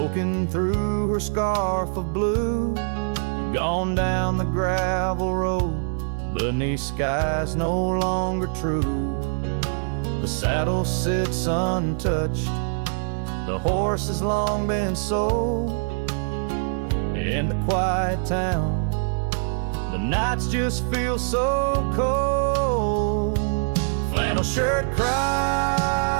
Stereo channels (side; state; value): left; silent; digital silence